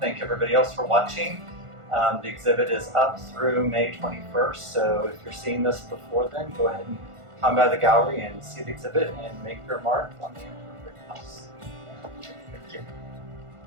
everybody else for watching. The exhibit is up through May 21st, so if you're seeing this before then, go ahead and come by the gallery and see the exhibit and make your mark on the imperfect house. Thank you.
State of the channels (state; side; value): late; left; 1.5 ms